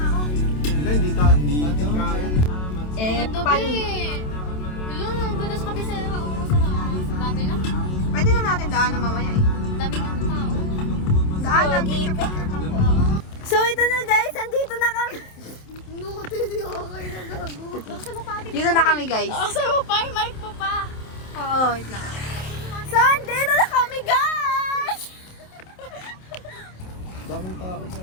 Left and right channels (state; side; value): late; right; 27 ms